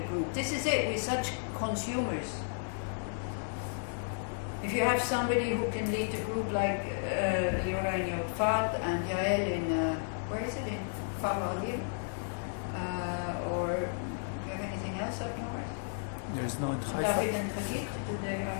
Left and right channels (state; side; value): silent; right; 56 dB below the other